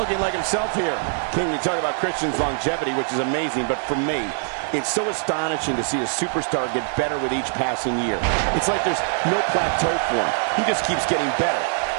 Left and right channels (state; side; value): silent; left; 56 dB below the other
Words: like himself here. King, you talk about Christian's longevity, which is amazing, but for me, it's so astonishing to see a superstar get better with each passing year. It's like there's no plateau for him. He just keeps getting better.